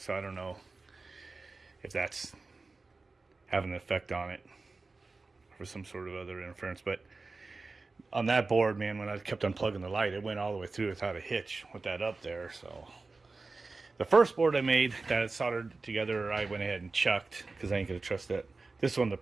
I don't know if that's having an effect on it or some sort of other interference. But on that board, man, when I kept unplugging the light, it went all the way through without a hitch with that up there. So the first board I made that I soldered together, I went ahead and chucked because I ain't gonna trust that. This one, the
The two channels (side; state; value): left; quieter; 3.7 dB